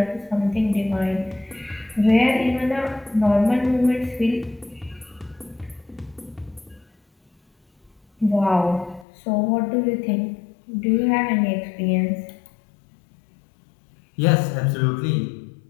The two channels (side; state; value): right; drops out; at 9.1 s